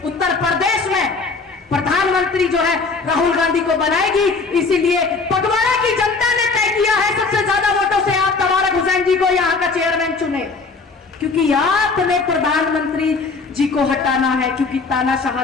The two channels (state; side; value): quieter; right; 4.2 dB